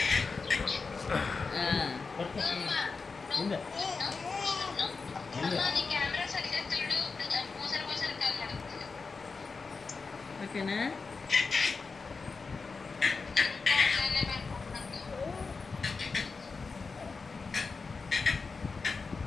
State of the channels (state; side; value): quieter; right; 4.5 dB